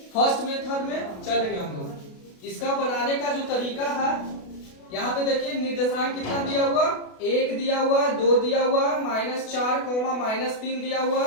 फर्स्ट मेथड में चलेंगे हम लोग। इसका बनाने का जो तरीका है, यहाँ पे देखिए निर्देशांक कितना दिया हुआ, 1 दिया हुआ, 2 दिया हुआ, -4, -3 दिया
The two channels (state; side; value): late; right; 32 ms